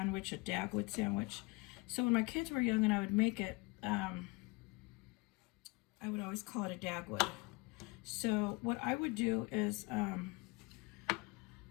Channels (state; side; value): quieter; right; 25.5 dB